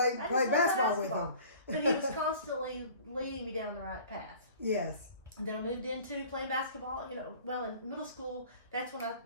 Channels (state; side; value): inverted; both; correlation -0.46